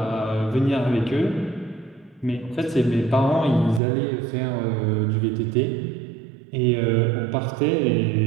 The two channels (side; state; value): left; drops out; at 3.8 s